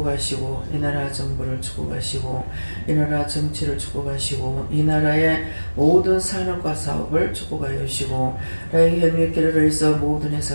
이 나라 정부를 축복하시고 이 나라 정치를 축복하시고 이 나라의 모든 산업과 사업을 축복하여 주시고 라이 헬미케르를 있어 모든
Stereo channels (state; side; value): inverted; both; correlation -1.00